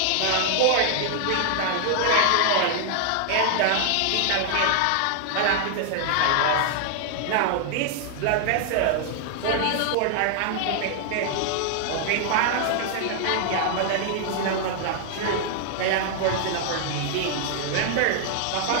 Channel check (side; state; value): both; different; correlation 0.00